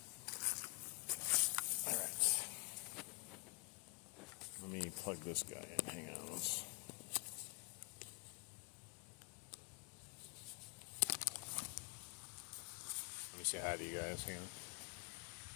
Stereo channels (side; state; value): right; quieter; 34.2 dB